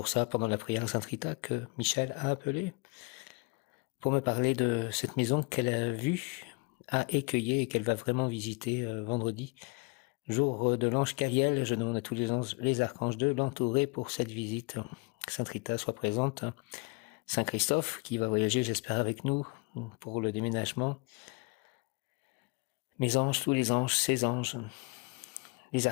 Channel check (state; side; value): quieter; right; 28.6 dB